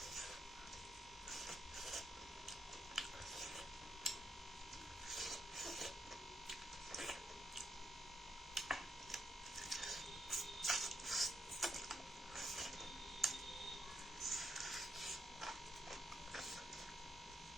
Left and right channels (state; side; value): normal; both; correlation 0.79